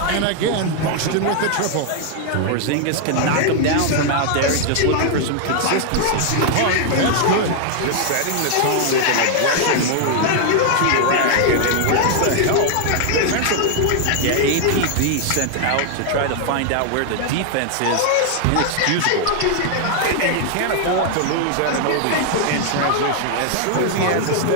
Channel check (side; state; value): both; different; correlation 0.00